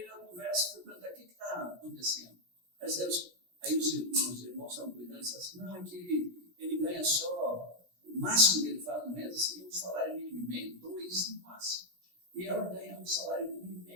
na conversa e fui perguntar: o que está acontecendo? Aí os irmãos estavam cuidando e disseram assim: não, é que ele ganha só o máximo que ele faz no mês, assim, um salário mínimo e meio, 2 no máximo. E ela ganha um salário mínimo e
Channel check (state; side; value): late; left; 17 ms